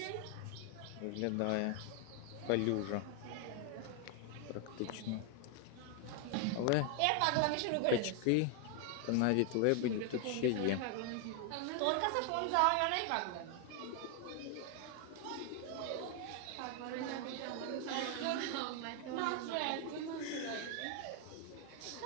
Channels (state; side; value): different; both; correlation 0.00